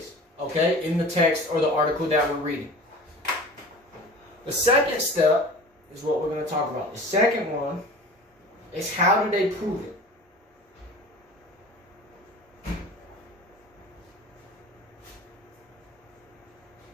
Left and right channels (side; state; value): both; normal; correlation 0.39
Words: okay, in the text or the article that we're reading. The second step is what we're going to talk about. The second one is how do they prove it?